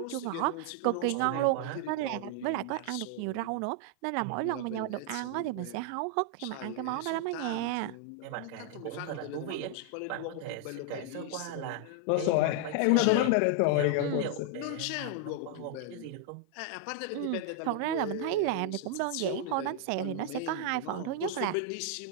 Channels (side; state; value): both; different; correlation 0.00